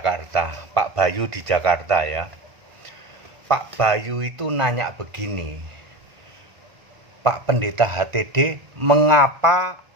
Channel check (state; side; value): late; left; 1.4 ms